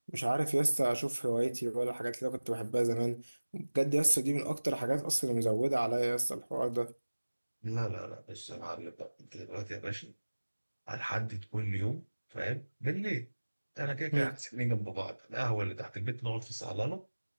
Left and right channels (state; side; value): inverted; both; correlation -1.00